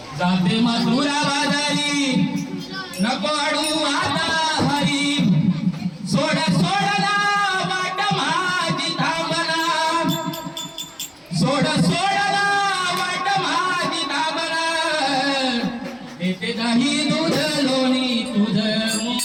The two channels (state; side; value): identical; both; correlation 1.00